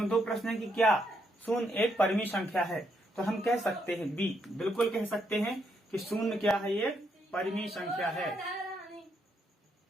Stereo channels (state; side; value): normal; both; correlation 0.76